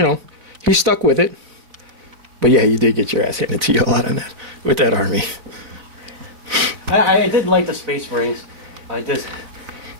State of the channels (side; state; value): left; late; 4.0 ms